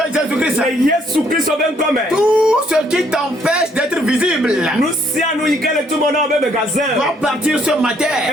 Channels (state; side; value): normal; both; correlation 0.67